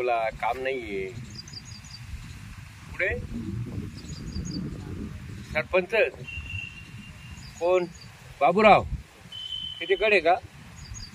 काम नाहीये. पुढे सरपंच कोण? बाबूराव तिच्याकडे का?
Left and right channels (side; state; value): both; identical; correlation 1.00